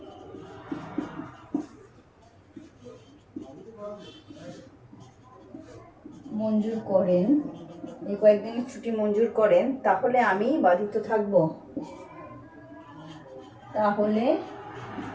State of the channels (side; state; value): both; identical; correlation 1.00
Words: মঞ্জুর করেন, তাহলে আমি বাধিত থাকব।